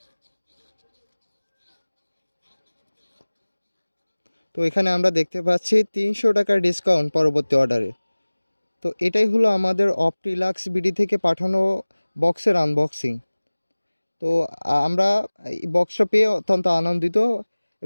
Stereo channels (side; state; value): both; inverted; correlation -1.00